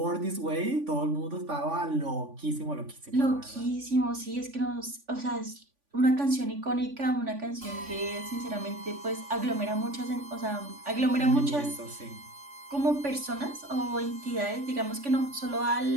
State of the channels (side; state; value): left; late; 3.5 ms